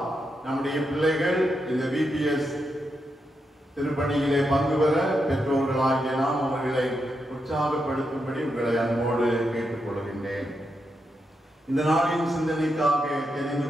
நம்முடைய பிள்ளைகள் இந்த VPS திருப்பணியிலே பங்கு பெற பெற்றோர்களாகிய நாம் அவர்களை உற்சாகப்படுத்தும்படி உங்களை அன்போடு கேட்டுக்கொள்கின்றேன். இந்த நாளின் சிந்தனைக்காக தெரிந்து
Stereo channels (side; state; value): both; normal; correlation 0.84